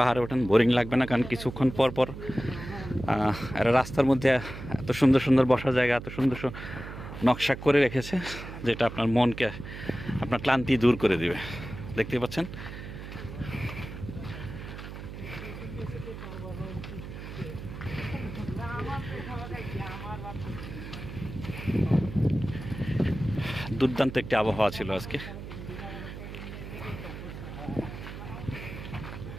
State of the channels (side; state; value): right; noise; hum, 10 dB below the sound